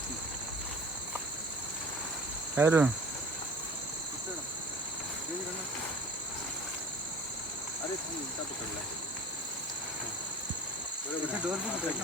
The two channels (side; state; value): left; noise; hiss, 21 dB below the sound